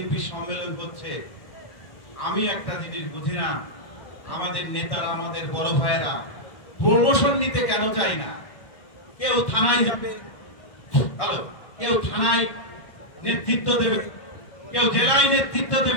সম্মেলন হচ্ছে। আমি একটা জিনিস বুঝি না, আমাদের নেতারা, আমাদের বড় ভাইয়েরা প্রমোশন নিতে কেন চাই না? কেউ থানায় যাবে, হ্যালো, কেউ থানায় নেতৃত্ব দেবে, কেউ জেলায় নেতৃত্ব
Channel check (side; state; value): right; late; 1.6 ms